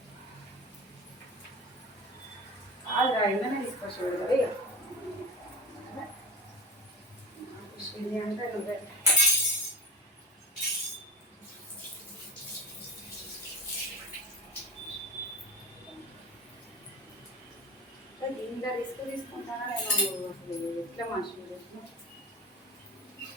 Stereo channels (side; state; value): both; normal; correlation 0.30